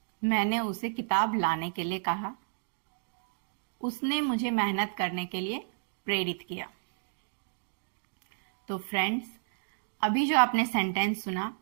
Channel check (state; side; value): silent; left; digital silence